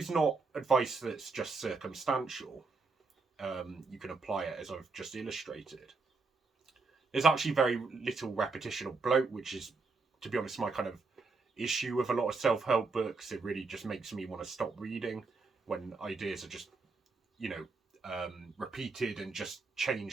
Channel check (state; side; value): quieter; left; 4.2 dB